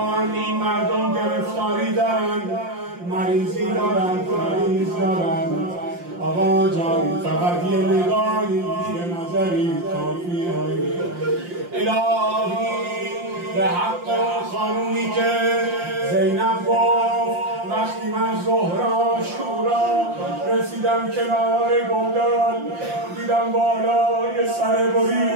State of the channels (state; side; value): late; left; 5.7 ms